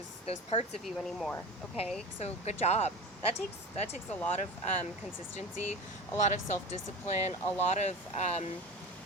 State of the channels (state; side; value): normal; both; correlation 0.31